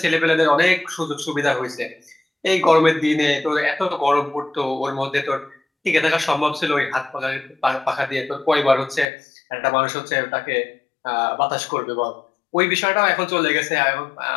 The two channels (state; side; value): drops out; right; at 9.1 s